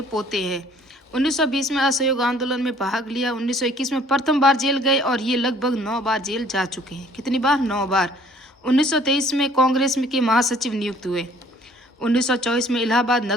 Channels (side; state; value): both; normal; correlation 0.56